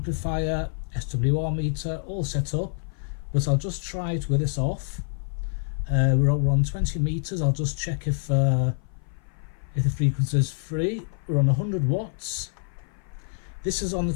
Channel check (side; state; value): right; silent; 56 dB below the other